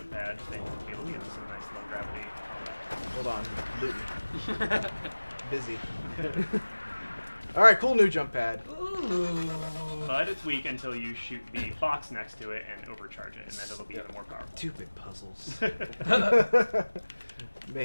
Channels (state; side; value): inverted; both; correlation -1.00